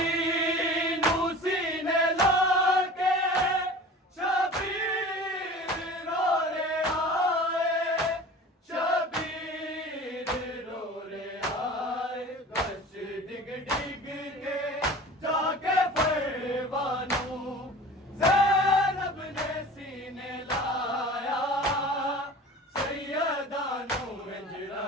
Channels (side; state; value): both; normal; correlation 0.40